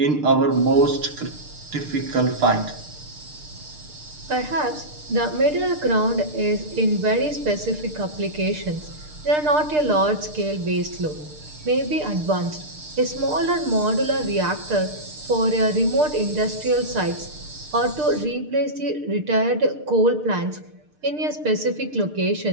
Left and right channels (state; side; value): late; left; 6.6 ms